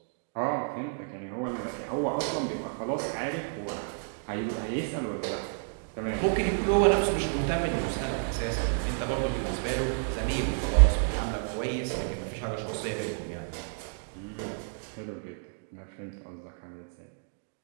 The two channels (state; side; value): silent; left; digital silence